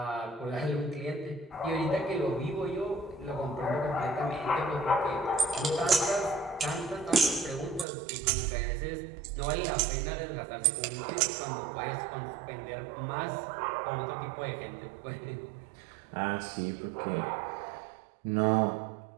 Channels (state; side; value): drops out; left; at 7.9 s